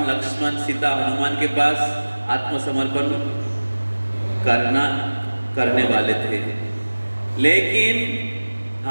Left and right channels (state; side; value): inverted; both; correlation -1.00